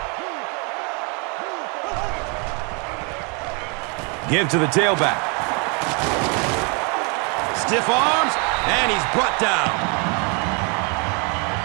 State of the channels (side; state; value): left; quieter; 34.0 dB